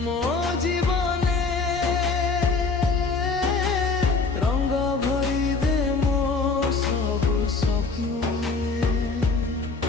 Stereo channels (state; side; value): quieter; right; 4.2 dB